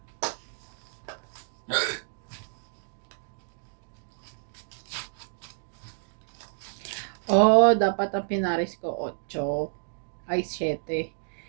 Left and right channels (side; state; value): left; silent; digital silence